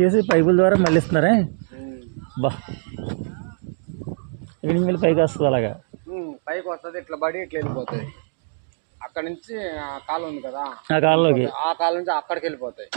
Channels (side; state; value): left; silent; digital silence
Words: చేసి పైపుల ద్వారా మళ్ళిస్తున్నారే బా ఇక్కడ నుంచి మళ్ళీ పైకి వస్తుంది అలాగా పైకి వస్తుంది ఇట్లా పడి ఇట్లా వెళ్ళిపోతాయి అక్కడ నుంచి కాలువ ఉంది కదా ఆ కాలువలోకి ఆ కాలువ నుంచి అక్కడికి వెళ్ళిపోతాయి